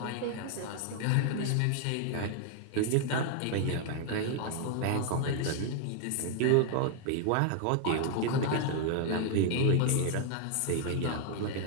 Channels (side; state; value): both; different; correlation 0.00